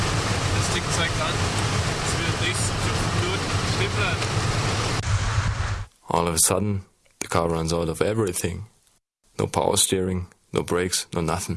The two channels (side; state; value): both; identical; correlation 1.00